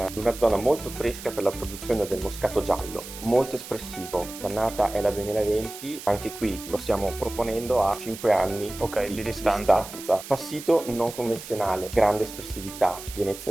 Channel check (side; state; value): right; noise; hiss, 13 dB below the sound